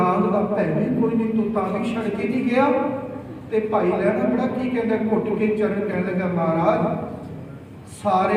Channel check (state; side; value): identical; both; correlation 1.00